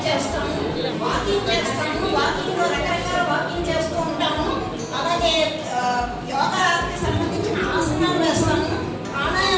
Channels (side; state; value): both; identical; correlation 1.00